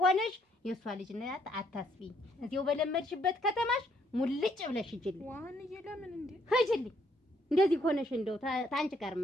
ሆነሽ የእሷ ልጅ ናት አታስቢኝ። እዚያው በለመድሽበት ከተማሽ ሙልጭ ብለሽ ሂጂልኝ። ዋንዬ ለምን እንዴ? ሂጂልኝ። እንደዚህ ሆነሽ እንደው ታንቺ ጋር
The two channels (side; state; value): both; normal; correlation 0.69